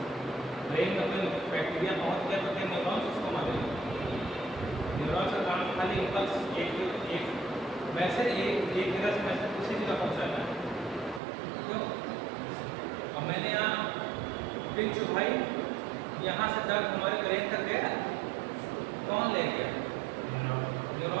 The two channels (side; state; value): left; drops out; at 11.2 s